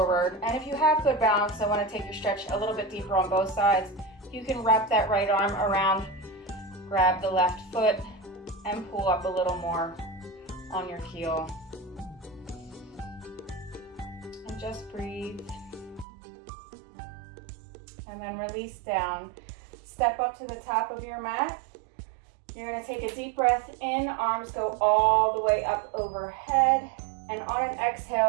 And if you have good balance, I want to take your stretch a little bit deeper on both sides. You can wrap that right arm around, grab the left foot, and pull up a little more on your heel. And just breathe. And then release down. Step up to the top of your mat. You're going to take a deep breath in, arms go all the way up overhead, and on an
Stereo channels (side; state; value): left; drops out; at 16.1 s